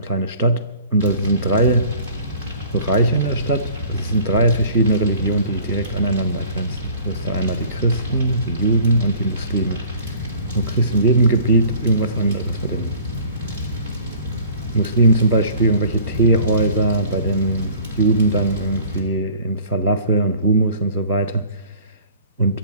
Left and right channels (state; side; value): inverted; both; correlation -0.49